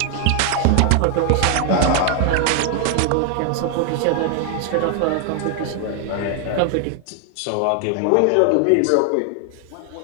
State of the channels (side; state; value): both; different; correlation 0.00